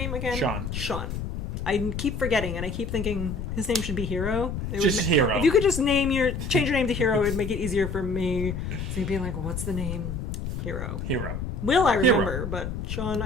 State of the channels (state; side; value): noise; left; rumble, 5 dB below the sound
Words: again? Sean. I keep forgetting, and I keep thinking his name should be Hero. Hero. If you could just change your name to Hero, it'd make it easier for me. So you'd be like, what's the name? Hero. Will I remember, but Sean,